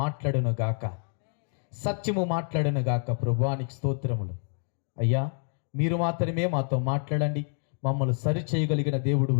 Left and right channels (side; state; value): right; silent; 60 dB below the other